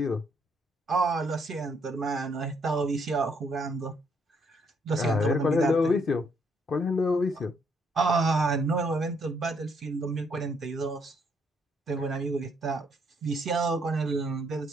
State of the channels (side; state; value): both; normal; correlation 0.71